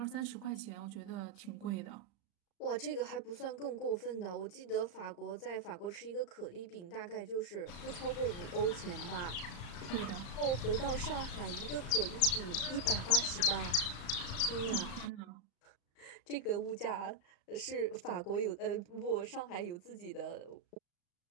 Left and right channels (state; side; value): late; right; 34 ms